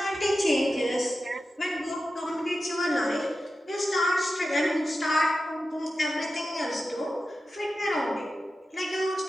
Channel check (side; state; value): both; normal; correlation 0.92